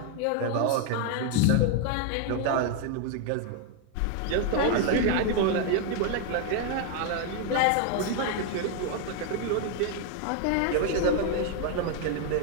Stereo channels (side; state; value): both; different; correlation 0.00